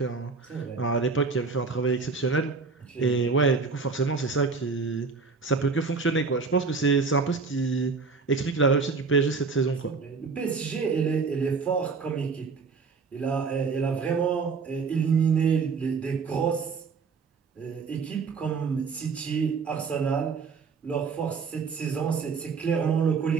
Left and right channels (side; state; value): left; quieter; 4.8 dB